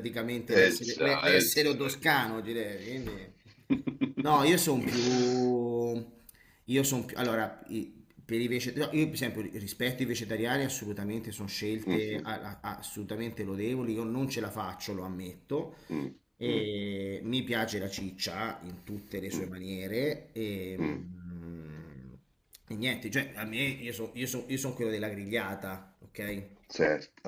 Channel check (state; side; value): identical; both; correlation 1.00